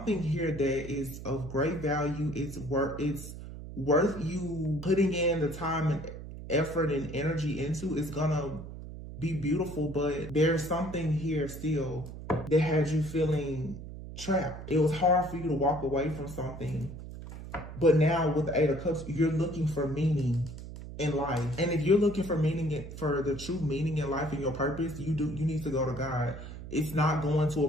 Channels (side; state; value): right; noise; hum, 11 dB below the sound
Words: here that is of great value. It's worth you putting in the time and effort and energy into. It's gonna be beautiful, but there's something here still that has you feeling trapped. It was hard for you to walk away from something. But now with the Eight of Cups, you're looking for meaning in life. And if you're looking for meaning, for the true meaning in life and your purpose, you need to go to God. It's not going to